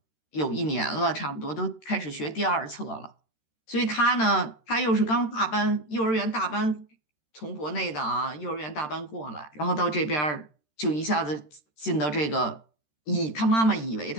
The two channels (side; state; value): right; late; 13 ms